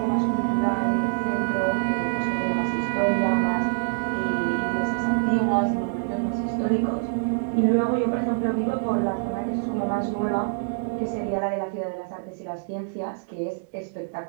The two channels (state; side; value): silent; left; digital silence